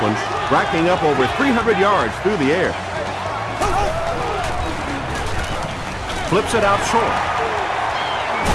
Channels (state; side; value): identical; both; correlation 1.00